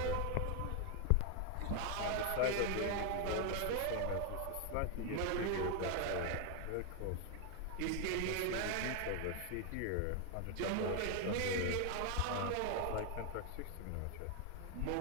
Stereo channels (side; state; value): both; different; correlation 0.01